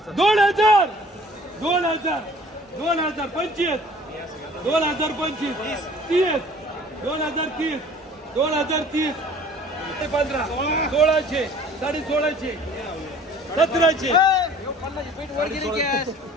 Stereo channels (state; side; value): normal; both; correlation 0.51